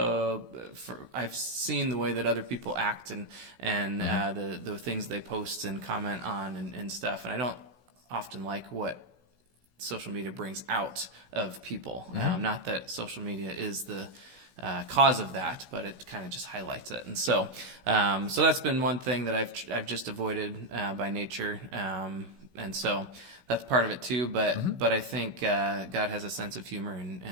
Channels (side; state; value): left; late; 16 ms